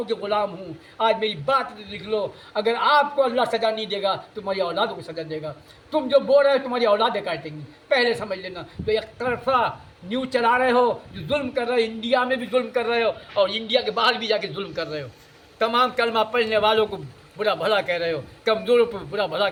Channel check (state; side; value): identical; both; correlation 1.00